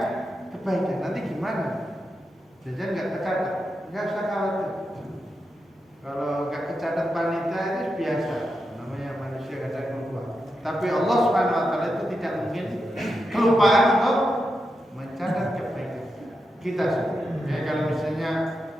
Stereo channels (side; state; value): both; normal; correlation 0.87